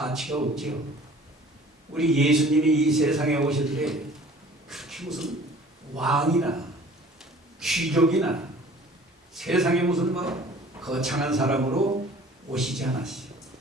없지요. 우리 예수님이 이 세상에 오실 때 그렇게 무슨 왕이나 귀족이나 세상에 무슨 거창한 사람으로 오시지 않았어요.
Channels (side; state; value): both; normal; correlation 0.49